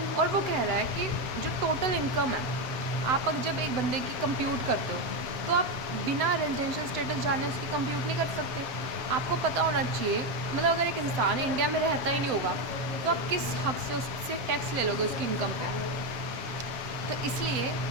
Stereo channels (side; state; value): left; late; 7.8 ms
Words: और वो कह रहा है कि जो टोटल इनकम है, आप अगर जब एक बंदे की कंप्यूट करते हो तो आप बिना रेजिडेंशियल स्टेटस जाने उसकी कंप्यूट नहीं कर सकते। आपको पता होना चाहिए, मतलब अगर एक इंसान इंडिया में रहता ही नहीं होगा तो आप किस हक से उससे टैक्स ले लोगे उसकी इनकम पे। तो इसलिए